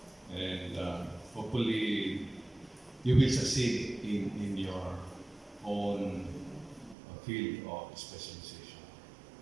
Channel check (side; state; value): left; drops out; at 7.0 s